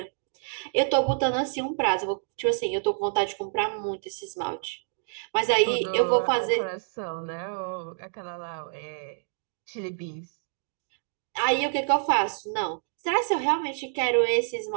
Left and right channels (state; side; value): silent; left; digital silence